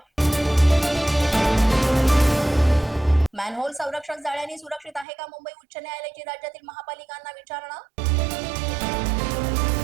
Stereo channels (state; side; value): drops out; left; at 5.1 s